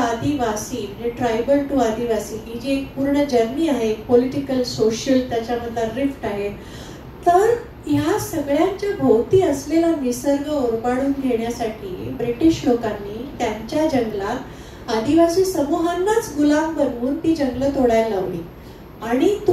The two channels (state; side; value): identical; both; correlation 1.00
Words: म्हणजे ट्रायबल टू आदिवासी ही जी एक पूर्ण जर्नी आहे, पॉलिटिकल सोशल त्याच्यामधला रिफ्ट आहे. तर ह्या सगळ्यांच्या भोवती असलेला निसर्ग ओरबाडून घेण्यासाठी ब्रिटिश लोकांनी त्यांच्या जंगलात आदिवासी समूहांनाच गुलाम बनवून ती जंगलं तोडायला लावली. आणि